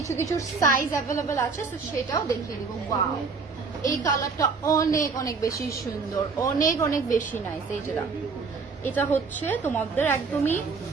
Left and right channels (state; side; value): quieter; left; 4.8 dB